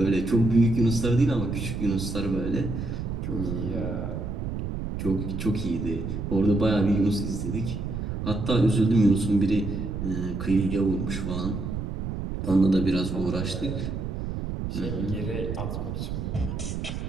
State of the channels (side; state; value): right; noise; rumble, 4 dB below the sound